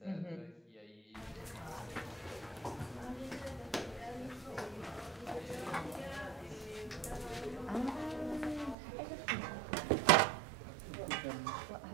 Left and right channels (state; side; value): drops out; left; at 8.8 s